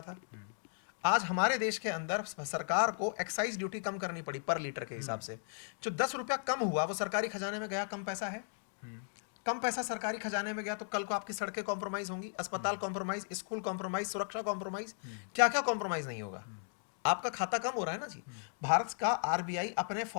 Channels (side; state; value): right; silent; digital silence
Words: था। आज हमारे देश के अंदर सरकार को एक्साइज ड्यूटी कम करनी पड़ी पर लीटर के हिसाब से। जो 10 रुपया कम हुआ वो सरकारी खजाने में गया, कम पैसा है। कम पैसा सरकारी खजाने में गया तो कल को आपकी सड़कें कॉम्प्रोमाइज होंगी, अस्पताल कॉम्प्रोमाइज, स्कूल कॉम्प्रोमाइज, सुरक्षा कॉम्प्रोमाइज, क्या क्या कॉम्प्रोमाइज नहीं होगा। आपका खाता कम हो रहा है ना जी। भारत का आरबीआई अपने